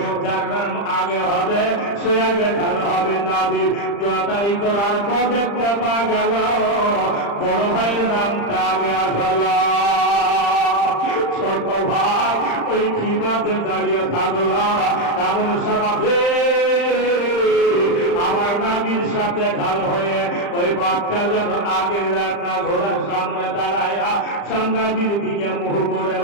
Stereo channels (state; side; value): late; right; 35 ms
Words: যার নাম আগে হবে সে আগে ঢাল হবে। নবী লটারি করার পর দেখতে পাওয়া গেল বড় ভাইয়ের নামটা আগে আসলো। ছোট ভাই ওই খিমাতে দাঁড়িয়ে থাকলো। এমন সমাজে আমার নবীর সাথে ঢাল হয়ে ওই বাচ্চা যখন আগের রান্না ঘোড়ার সামনে দাঁড়ায়া নবীর দিকে মুখ করে